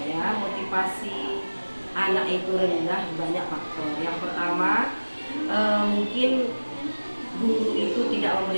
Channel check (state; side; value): inverted; both; correlation -1.00